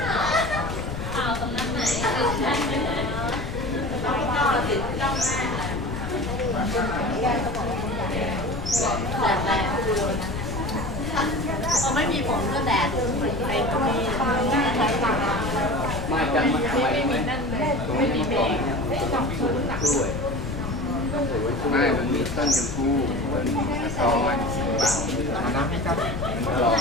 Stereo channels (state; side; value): noise; left; rumble, 6 dB below the sound